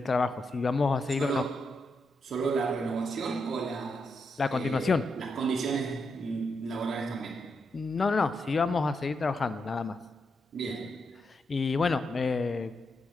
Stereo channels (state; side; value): normal; both; correlation 0.83